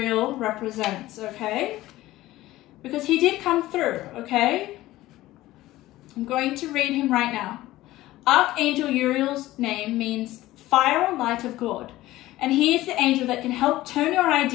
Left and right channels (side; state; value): right; quieter; 16.5 dB